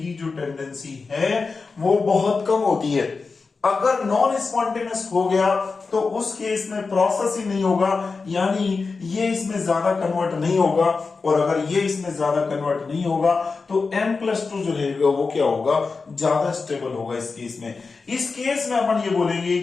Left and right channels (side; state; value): right; quieter; 4.4 dB